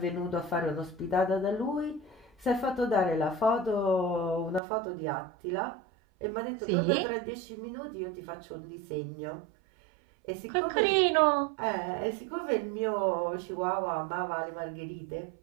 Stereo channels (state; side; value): drops out; left; at 4.6 s